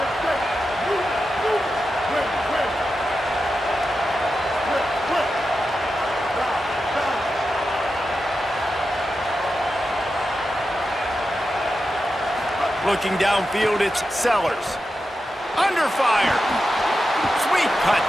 Looking downfield, it's Sellers. Under fire. Sweet cut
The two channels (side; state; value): both; normal; correlation 0.90